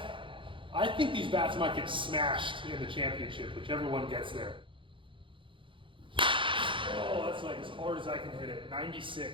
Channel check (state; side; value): late; left; 0.25 ms